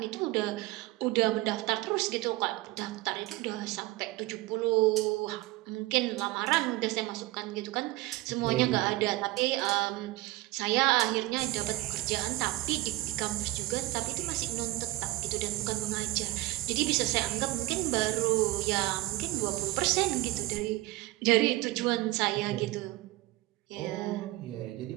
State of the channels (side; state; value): left; quieter; 19.0 dB